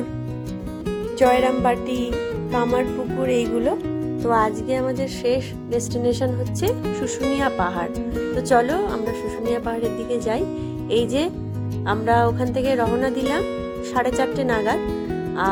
জয়রামবাটি, কামারপুকুর এইগুলো। তো আজকে আমাদের শেষ ডেস্টিনেশন হচ্ছে শুশুনিয়া পাহাড়। তো চলো আমরা শুশুনিয়া পাহাড়ের দিকে যাই। এই যে আমরা ওখান থেকে রওনা দিলাম 4:30 নাগাদ,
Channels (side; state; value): both; identical; correlation 1.00